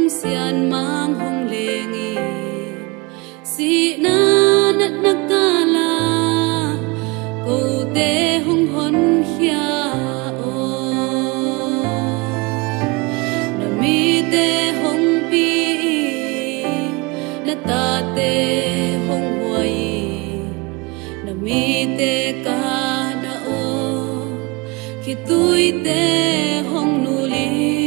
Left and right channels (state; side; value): quieter; left; 26.2 dB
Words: sian mang hong lengi si na nat nakala ko te hong hon hia o na mi te hong pi na ta te hong huai na mi te ka na o khi tui te hong nu li